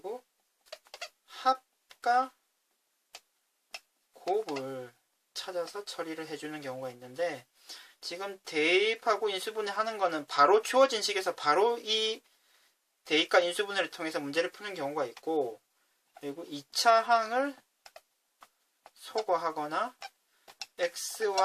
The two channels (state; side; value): identical; both; correlation 1.00